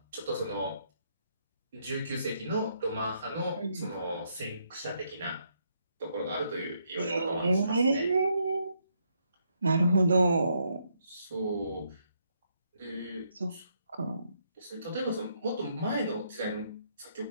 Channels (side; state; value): both; inverted; correlation -0.75